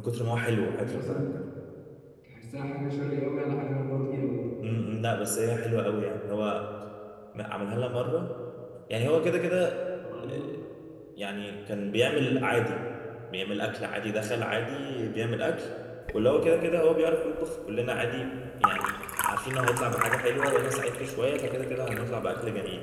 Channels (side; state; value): both; identical; correlation 1.00